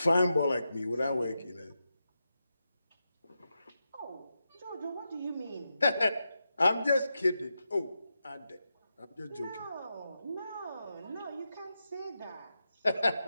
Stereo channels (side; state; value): both; inverted; correlation -0.88